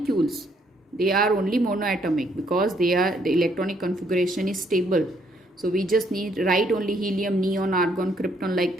They are only monoatomic because the electronic configuration is stable. So we just need write only helium, neon, argon, krypton, like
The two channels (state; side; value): normal; both; correlation 0.69